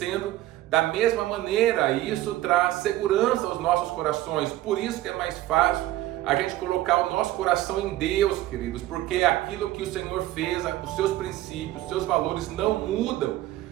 da mesma maneira. E isso traz segurança aos nossos corações. Por isso que é mais fácil a gente colocar o nosso coração em Deus, queridos, porque aquilo que o Senhor fez, os seus princípios, os seus valores não mudam.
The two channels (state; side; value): quieter; left; 15.3 dB